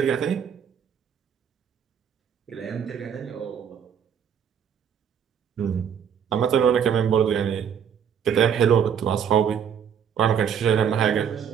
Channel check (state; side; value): quieter; left; 8.0 dB